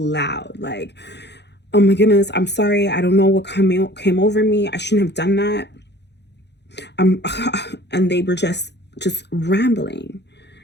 Like, oh my goodness, I'm sorry. I don't know what came over me. I shouldn't have done that. And they were just rambling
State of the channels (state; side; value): late; right; 0.50 ms